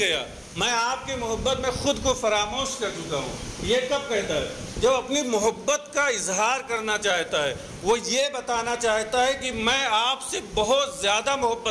میں آپ کی محبت میں خود کو فراموش کر چکا ہوں۔ یہ کب کہتا ہے؟ جب اپنی محبت کا اظہار کرنا چاہتا ہے، وہ یہ بتانا چاہتا ہے کہ میں آپ سے بہت زیادہ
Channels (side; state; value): both; identical; correlation 1.00